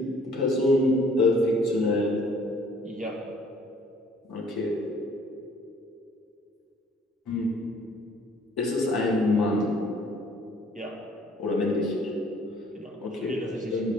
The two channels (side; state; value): both; normal; correlation 0.58